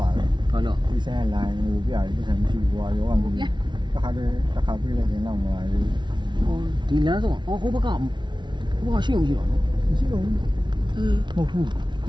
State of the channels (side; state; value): left; late; 0.23 ms